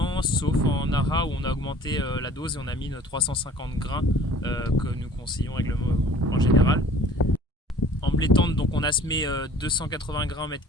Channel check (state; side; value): normal; both; correlation 0.49